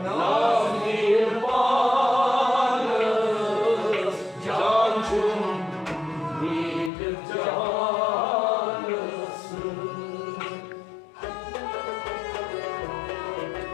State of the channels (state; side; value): drops out; right; at 6.9 s